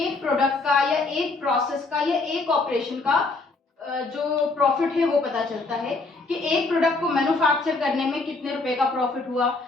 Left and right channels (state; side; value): quieter; right; 3.6 dB